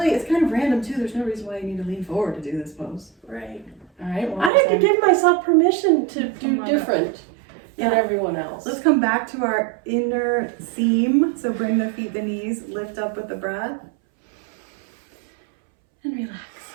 kind of random too. There's no reason why you need to lean forward to do this pose. Right. All right. I have to give myself permission to do different than Yeah. everyone else. Let's come back to our inner seam. So bring the feet, the knees, lift up with the breath. And relax.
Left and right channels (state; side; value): drops out; left; at 4.5 s